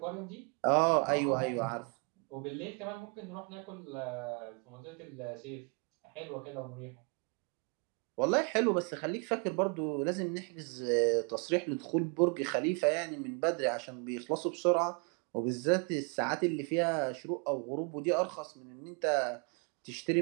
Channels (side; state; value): left; quieter; 36.0 dB